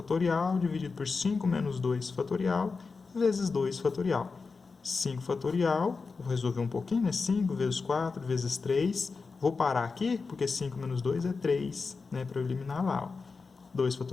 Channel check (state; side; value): quieter; right; 4.5 dB